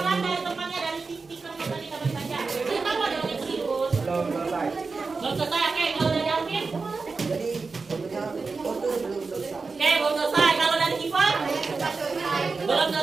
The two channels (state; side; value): quieter; left; 4.3 dB